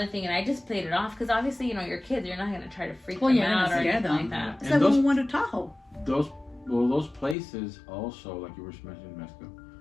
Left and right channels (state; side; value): drops out; right; at 7.4 s